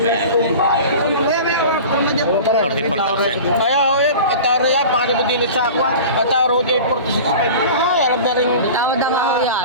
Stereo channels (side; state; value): both; inverted; correlation -0.37